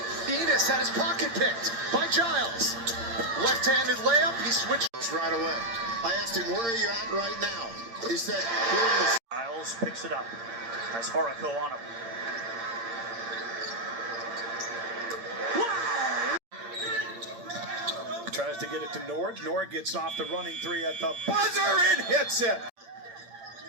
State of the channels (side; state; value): left; late; 8.7 ms